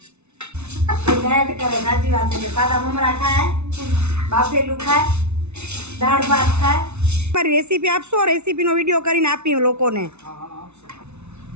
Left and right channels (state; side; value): late; left; 0.81 ms